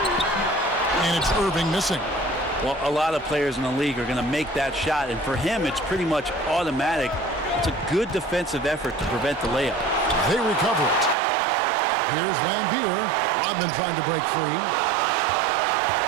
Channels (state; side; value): drops out; left; at 11.2 s